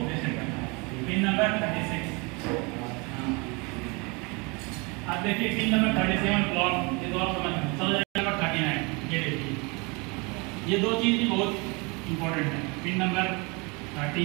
रिसेट करना है। Pin number 36। अब देखिए पिन नंबर 37 क्लॉक, ये तो आप समझ नंबर 39। ये देखिए ये दो चीज भी बहुत इंपॉर्टेंट है। Pin number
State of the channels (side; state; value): left; quieter; 28.7 dB